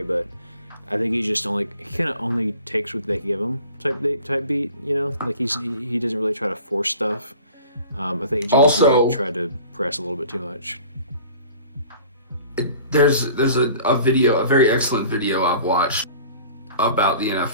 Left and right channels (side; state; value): both; inverted; correlation -0.46